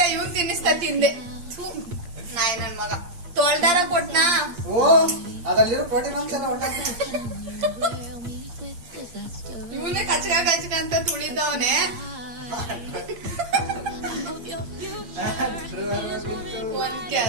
ಇವ್ನು ತಿನ್ನಿಸ್ತಾ ತಿಂದೆ. ನಾಯಿ ನನ್ ಮಗ ತೊಳ್ದಾರ ಕೊಟ್ನಾ. ಓ, ಅದಲ್ಲಿರೋ ಪ್ರೋಟೀನ್ ಅಂಶ ಊಟ. ಇವನೇ ಕಚ್ಕ ಅಂತ ತುಳಿದವನೆ. ಒಂದ್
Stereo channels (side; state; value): left; late; 8.6 ms